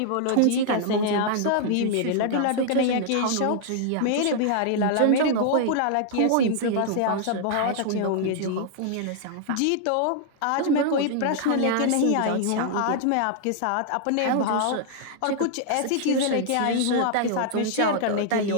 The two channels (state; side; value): different; both; correlation -0.01